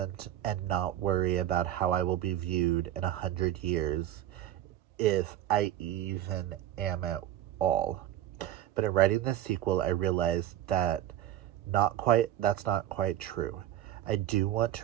and not worry about how I will be viewed in 100 years, if I even am at all. But in writing this sequel, I realized that's not quite true. I do want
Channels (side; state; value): left; quieter; 12.4 dB